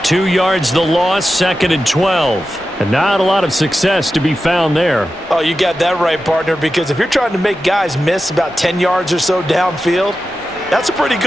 2 yards the loss, 2nd and 12. And not a lot of success to be found there. Oh, you got that right, partner, because if you're trying to make guys miss about 10 yards or so downfield, that's a pretty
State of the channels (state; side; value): normal; both; correlation 0.92